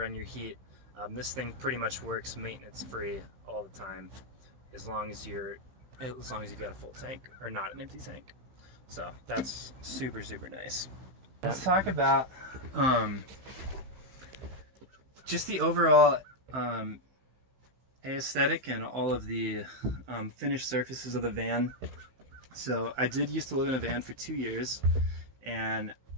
your heat. This thing pretty much works maintenance free all the time, as long as you've got a full tank or not an empty tank. So that's super nice. Let's talk about just the overall aesthetic and all of the finished surfaces of the van. So I did used to live in a van for 2 years, and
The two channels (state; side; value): late; left; 15 ms